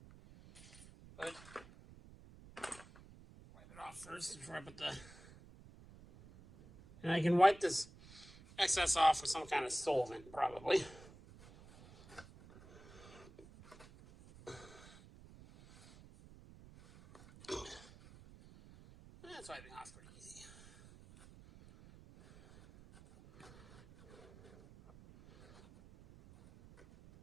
But wipe it off first before I put the. And I can wipe this excess off with some kind of solvent, probably. That's wiping off pretty easy.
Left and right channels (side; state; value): right; noise; rumble, 20 dB below the sound